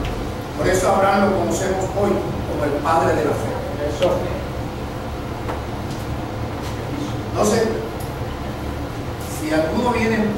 Por eso a Abraham lo conocemos hoy como el padre de la fe. Eso. Entonces, si alguno viene en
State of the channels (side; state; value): both; identical; correlation 1.00